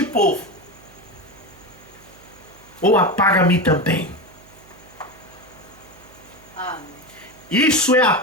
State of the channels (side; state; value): right; noise; hum, 25 dB below the sound